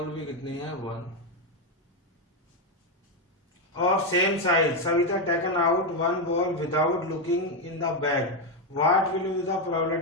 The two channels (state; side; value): normal; both; correlation 0.06